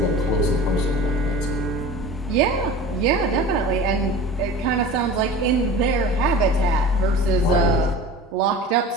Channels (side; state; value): both; normal; correlation 0.37